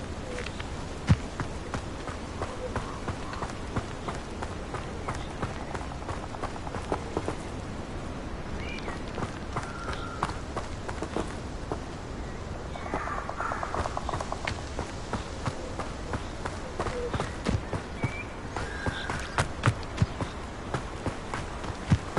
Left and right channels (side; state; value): both; identical; correlation 1.00